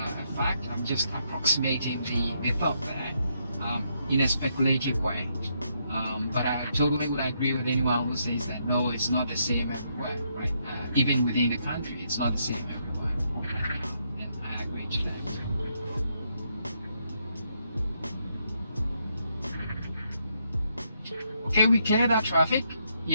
fact. I'm just approximating the thought there in a speculative way. But I totally would agree with anyone who says that no, it's not the same everywhere, right? Even within the country, it's not the same everywhere. And I agree to that. Okay, we cleared that traffic.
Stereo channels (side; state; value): both; inverted; correlation -0.77